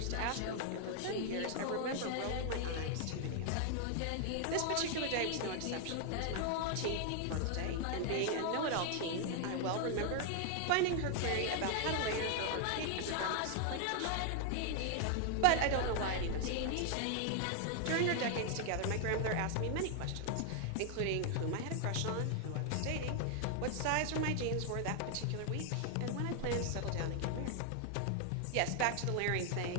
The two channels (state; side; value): different; both; correlation 0.00